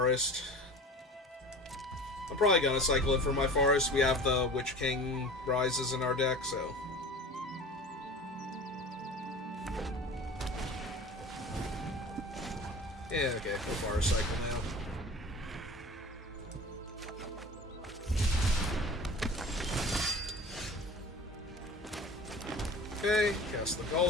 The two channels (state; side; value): normal; both; correlation 0.38